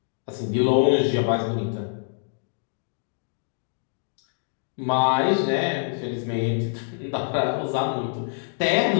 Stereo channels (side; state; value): right; silent; digital silence